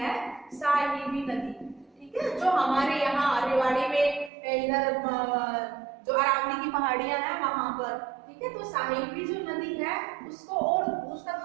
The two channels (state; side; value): drops out; left; at 4.3 s